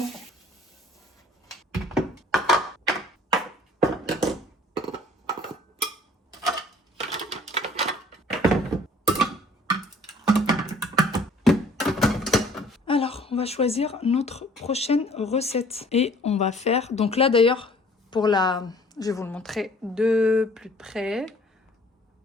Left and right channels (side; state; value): both; normal; correlation 0.54